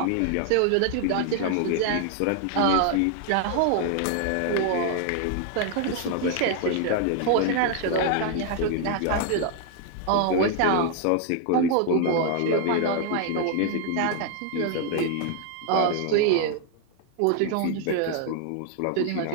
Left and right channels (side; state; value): both; different; correlation 0.00